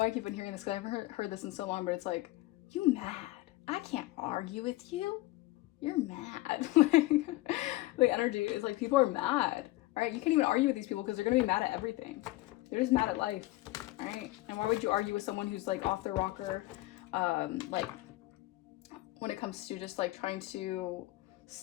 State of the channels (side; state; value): right; quieter; 19.0 dB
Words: I keep on hearing this because I haven't heard this in so long, but it's like, you mad? I can't argue with you. You're mad. Like energy is like, people are mad. All right, you can't even argue with these people because they're gonna be mad at everything. They're just mad at life. All right, and why would you argue with someone who's like off their rocker? Like when it comes to just like trying to